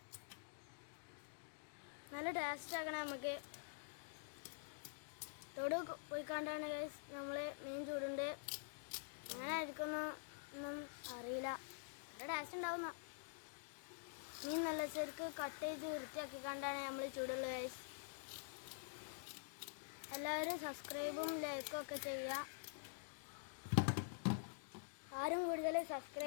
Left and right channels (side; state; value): right; silent; digital silence